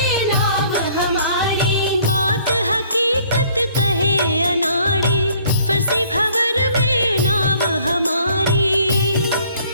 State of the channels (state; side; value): inverted; both; correlation -0.59